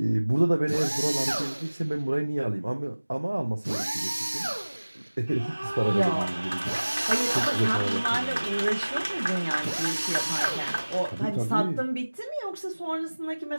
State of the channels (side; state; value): both; inverted; correlation -1.00